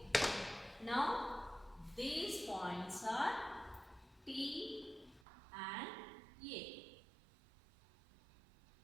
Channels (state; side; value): drops out; left; at 5.2 s